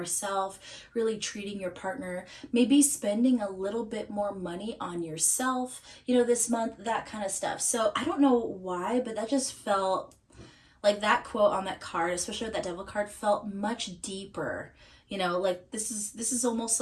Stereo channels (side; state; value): both; identical; correlation 1.00